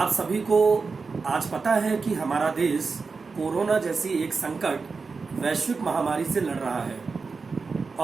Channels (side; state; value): left; quieter; 4.6 dB